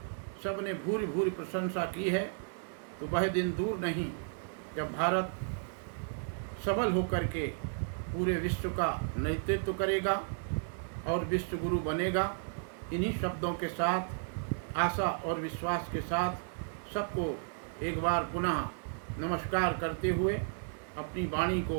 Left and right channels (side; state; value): left; silent; digital silence